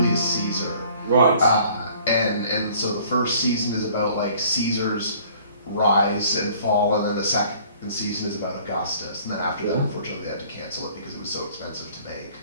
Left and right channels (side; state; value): both; inverted; correlation -0.54